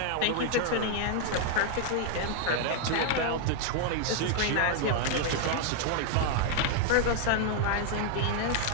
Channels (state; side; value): different; both; correlation 0.00